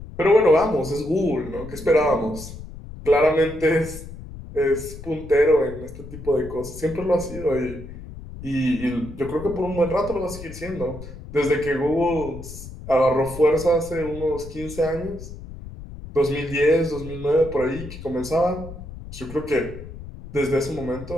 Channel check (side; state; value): left; noise; rumble, 13 dB below the sound